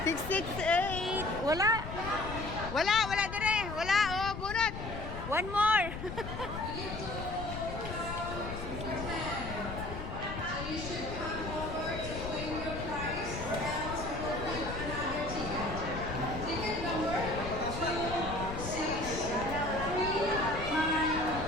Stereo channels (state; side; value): noise; left; rumble, 7 dB below the sound